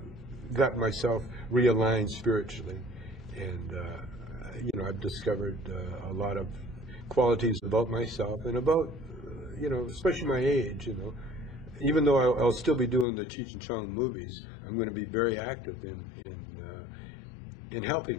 got myself realigned spiritually, and I've discovered a lot of qualities about myself and about especially my age. Even though I'll still be doing the Cheech and Chong movies, I'm going to be very active in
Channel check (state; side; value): drops out; right; at 13.1 s